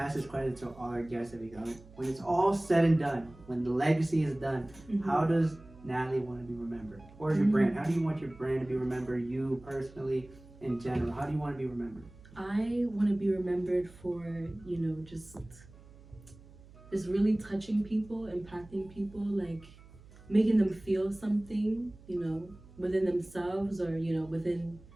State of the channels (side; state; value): right; noise; hum, 22 dB below the sound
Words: this question to all our guests that we go. When it's all said and done, when the legacy is done, how does Natalie want to be remembered? Or your brand? How do you want your brand to be remembered, you personally, in general? How do you want to be remembered? I want to be remembered for, just really touching people, impacting people, like making them feel something, within themselves or, within